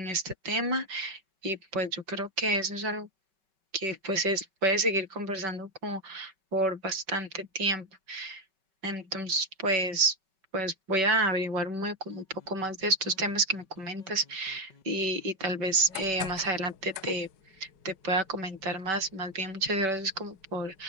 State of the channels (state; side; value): late; left; 5.3 ms